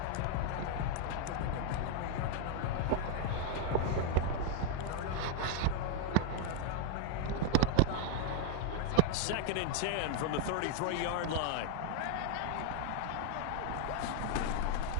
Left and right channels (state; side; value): different; both; correlation 0.01